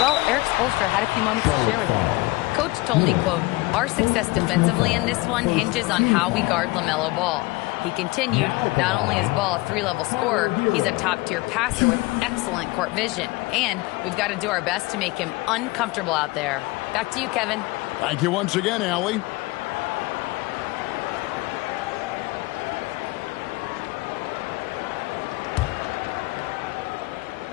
Well, Eric Spoelstra had a few moments to share with me. Coach told me, quote, "Our success defensively in this one hinges on how we guard LaMelo Ball." He continued, not only is Ball a 3-level scorer, he's a top-tier passer with excellent court vision. And we've got to do our best to make him uncomfortable out there. Back to you, Kevin. Thank you once again, Allie.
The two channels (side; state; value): right; quieter; 22.2 dB